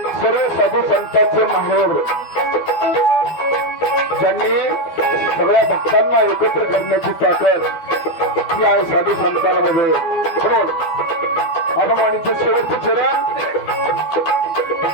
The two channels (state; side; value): late; right; 12 ms